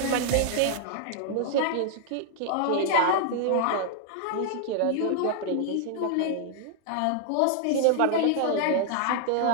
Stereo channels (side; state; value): both; different; correlation -0.01